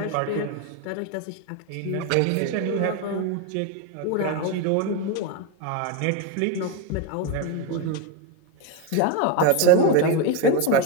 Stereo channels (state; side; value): different; both; correlation 0.02